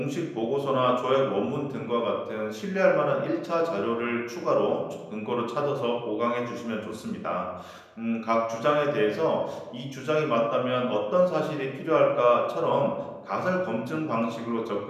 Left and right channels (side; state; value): both; identical; correlation 1.00